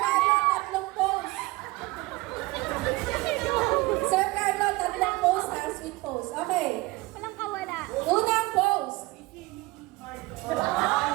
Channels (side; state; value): left; quieter; 21.7 dB